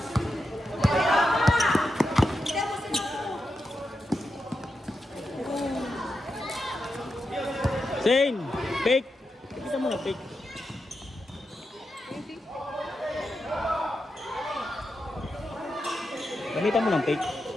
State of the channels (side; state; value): both; normal; correlation 0.87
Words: Zane! Fake! Kita mo na, fake. Gamitan mo ng fake.